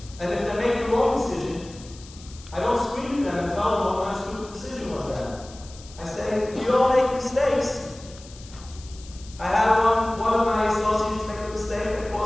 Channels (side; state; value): left; noise; hiss, 20 dB below the sound